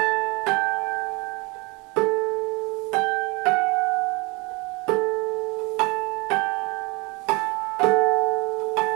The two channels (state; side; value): quieter; left; 27.0 dB